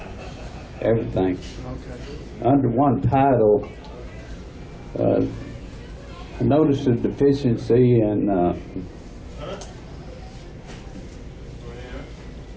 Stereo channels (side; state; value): both; identical; correlation 1.00